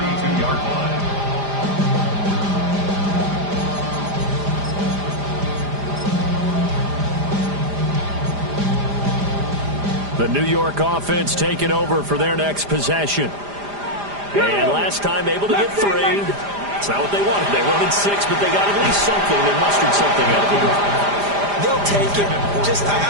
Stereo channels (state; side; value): late; left; 5.0 ms